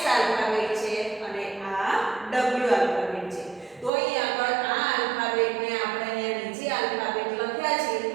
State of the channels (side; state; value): left; drops out; at 3.9 s